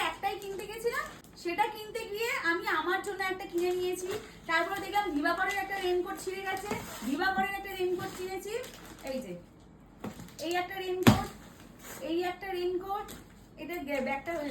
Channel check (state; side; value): identical; both; correlation 1.00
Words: একটাই কিনতে গেছিলাম। সেটা কিনতে গিয়ে আমি আমার জন্য একটা কিনে নিয়েছি। তারপরে দেখলাম দিবাকরের একটা রেইনকোট ছিঁড়ে গেছে, দিবাকরের একটা রেইনকোট কিনেছি। এই যে এই একটা রেইনকোট, এই একটা রেইনকোট, এটা ব্যাগটা